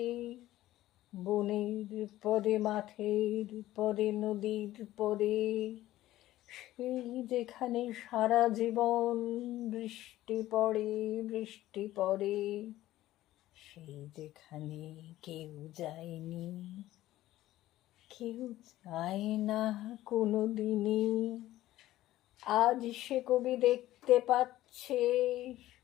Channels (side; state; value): right; quieter; 15.1 dB